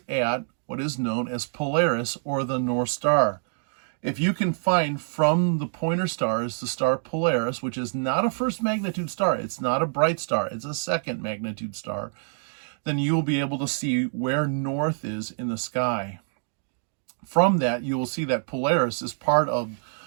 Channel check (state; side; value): silent; left; digital silence